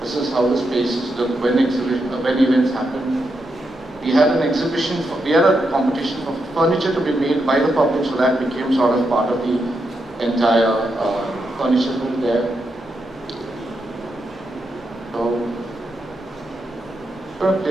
This is how the spaces look when events happen. We had an exhibition, we had a competition for furniture to be made by the public, so that became sort of part of the entire furniture built there. So, I'm going to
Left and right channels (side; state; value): both; normal; correlation 0.84